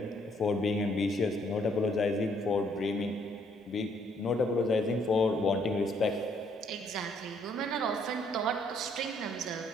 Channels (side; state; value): both; normal; correlation 0.67